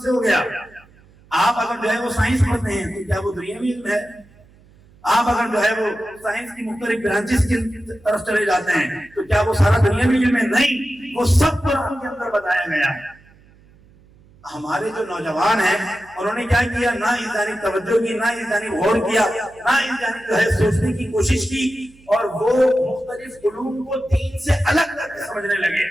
سے ہو گیا؟ آپ اگر جو ہے وہ سائنس پڑھتے ہیں تو کیا وہ دنیاوی علم ہے؟ آپ اگر جو ہے وہ سائنس کی مختلف برانچز کی طرف چلے جاتے ہیں تو کیا وہ سارا دنیاوی علم ہے؟ نہیں, وہ سب قرآن کے اندر بتایا گیا ہے. ہمارے جو نوجوان ہیں انہوں نے کیا کیا, نہ اس جانب توجہ کی, نہ اس جانب غور کیا, نہ اس جانب جو ہے سوچنے کی کوشش کی, اور وہ مختلف علوم کو دین سے الگ کر کے سمجھنے لگے.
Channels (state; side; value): noise; right; hum, 28 dB below the sound